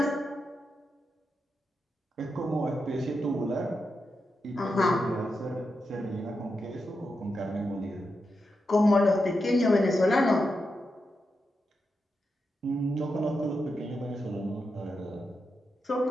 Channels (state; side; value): normal; both; correlation 0.87